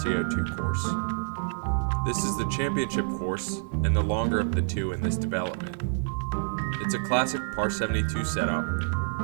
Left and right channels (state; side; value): silent; left; digital silence